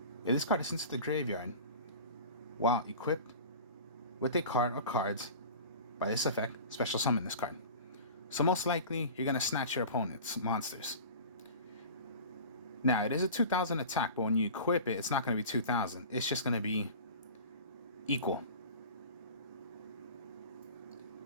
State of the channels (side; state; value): both; inverted; correlation -0.37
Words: If this card is sent to the graveyard while equipped with a card or cards by this effect, special summon this card. So most likely, you're going to snatch your opponent's monsters. Now, it is a 2,000 attack, but when you equip it, it's not going to be 2,000. It's just going to be equal.